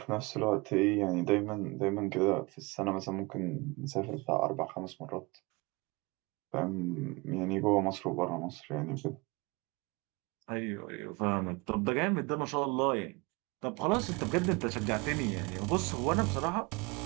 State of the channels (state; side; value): quieter; left; 26.1 dB